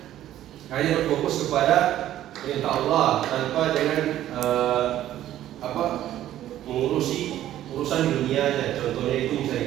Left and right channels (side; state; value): left; quieter; 12.7 dB